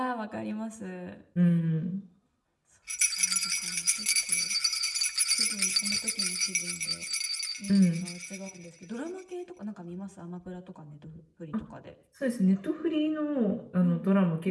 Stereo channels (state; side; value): identical; both; correlation 1.00